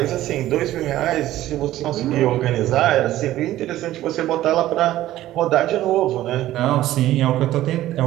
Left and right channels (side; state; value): left; quieter; 14.4 dB